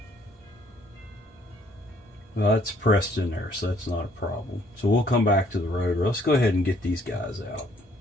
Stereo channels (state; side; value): normal; both; correlation 0.63